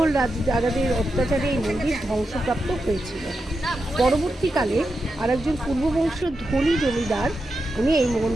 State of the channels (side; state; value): both; normal; correlation 0.88